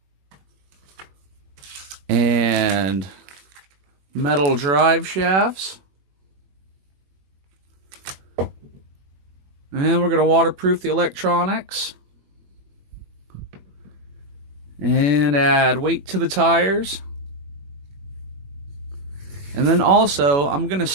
and metal drive shafts. And we're going to waterproof the electronics and add weight to the tires. And then also, I'm going to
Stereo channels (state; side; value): late; left; 21 ms